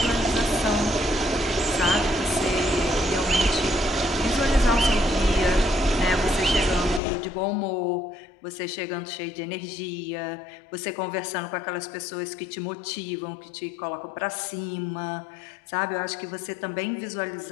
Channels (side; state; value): right; drops out; at 7.0 s